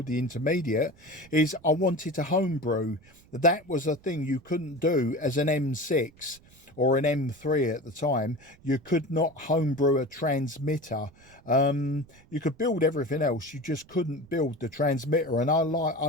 the intermediate, is I wanted to homebrew. That was a thing you couldn't do as an M6 or an M3 at the time. You could not homebrew a transmitter. You could build everything else, you just couldn't build the transmitter. And I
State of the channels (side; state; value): right; noise; rumble, 27 dB below the sound